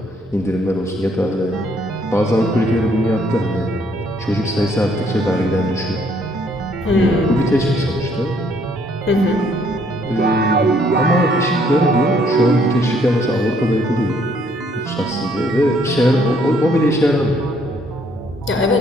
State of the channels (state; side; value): normal; both; correlation 0.66